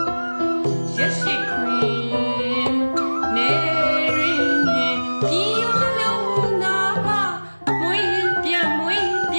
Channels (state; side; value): inverted; both; correlation -1.00